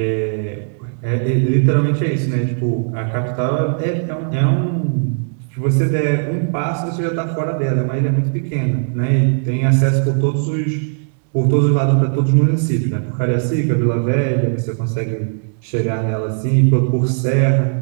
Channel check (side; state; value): left; silent; digital silence